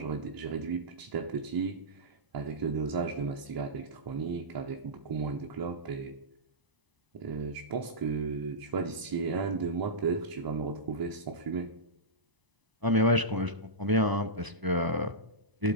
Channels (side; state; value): left; late; 1.0 ms